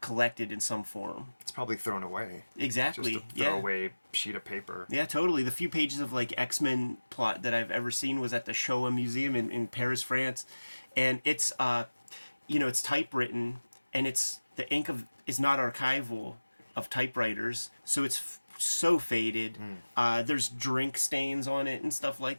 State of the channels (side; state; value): both; inverted; correlation -1.00